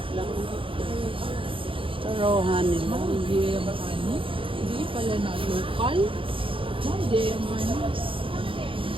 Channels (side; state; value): left; late; 0.25 ms